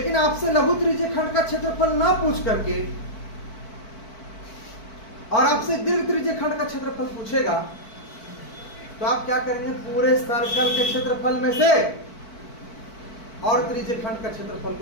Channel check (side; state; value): right; late; 4.5 ms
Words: आपसे लघु त्रिज्यीय खंड का क्षेत्रफल ना पूछ करके और आपसे दीर्घ त्रिज्यीय खंड का क्षेत्रफल पूछेगा तो आप क्या करेंगे, पूरे सर्कल के क्षेत्रफल में से और त्रिज्यीय खंड का क्षेत्रफल